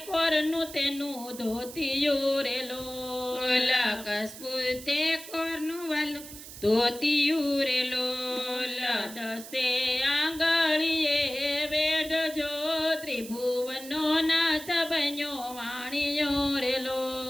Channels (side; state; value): right; noise; hiss, 14 dB below the sound